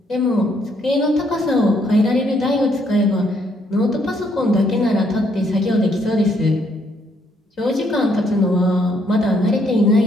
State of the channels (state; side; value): normal; both; correlation 0.71